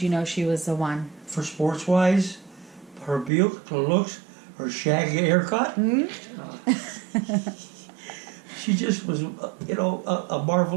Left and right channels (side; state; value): left; drops out; at 3.3 s